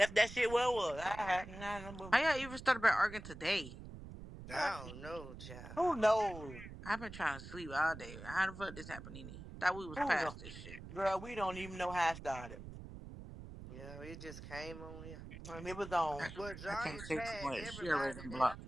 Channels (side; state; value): right; noise; rumble, 12 dB below the sound